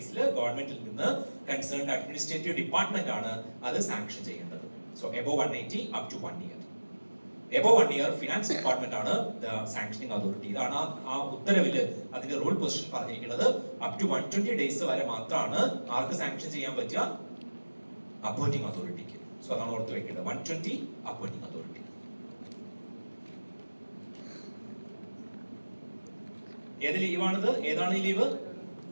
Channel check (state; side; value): inverted; both; correlation -1.00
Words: ഗവൺമെന്റിൽ നിന്ന് കൺസേൺഡ് അഡ്മിനിസ്ട്രേറ്റീവ് ഡിപ്പാർട്ട്മെന്റ് ആണ് അത് സാങ്ഷൻ ചെയ്യേണ്ടത്. So above 180 up to 1 year. Above 1 year finance department ആണ് ദ സാങ്ഷനിങ് അതോറിറ്റി. ഇതാണ് ആ ഉത്തരവില് അതിന്റെ റൂൾ പൊസിഷൻ പറഞ്ഞിരിക്കുന്നത്. അപ് ടു 120 ഡേയ്സ് വരെ മാത്രമാണ് ആർക്ക് സാങ്ഷൻ ചെയ്യാൻ പറ്റുക? അപ്പോയിന്റിംഗ് അതോറിറ്റിക്ക്. സോ അതാണ് ഓർത്ത് വെക്കേണ്ടത്, 120 അപ്പോയിന്റിംഗ് അതോറിറ്റി. ഏത് ലീവാണിത്? ഏതാണ് ഈ leave?